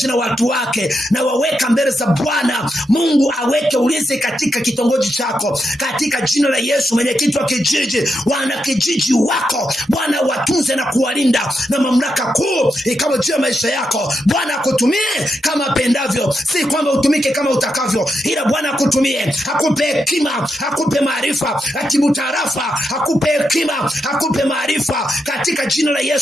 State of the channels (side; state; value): both; normal; correlation 0.84